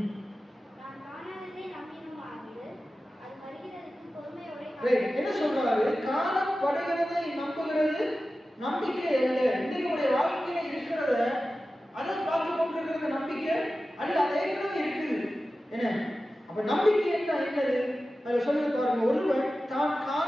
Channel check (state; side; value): normal; both; correlation 0.94